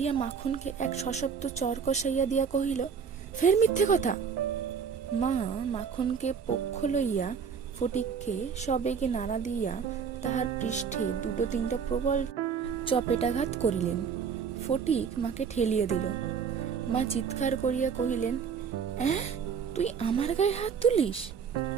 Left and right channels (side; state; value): left; quieter; 6.6 dB